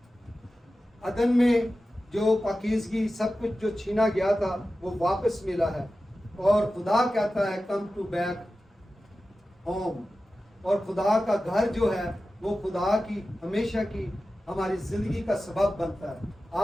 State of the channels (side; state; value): both; normal; correlation 0.94